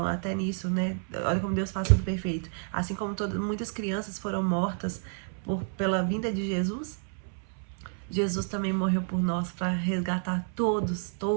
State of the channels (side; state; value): left; silent; 58 dB below the other